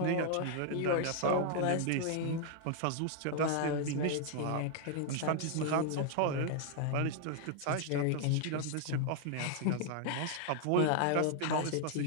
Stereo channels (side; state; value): both; different; correlation 0.00